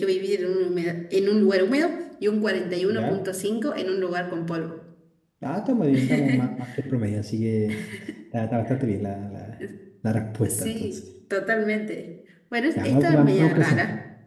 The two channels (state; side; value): identical; both; correlation 1.00